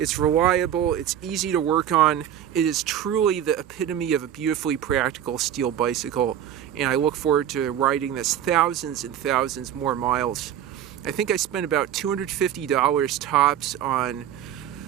reliable, it's easy to work on. It is truly the epitome of a beautifully practical steel bicycle, and I look forward to riding this thousands and thousands more miles. I think I spent about $250 tops on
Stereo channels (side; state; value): left; quieter; 10.3 dB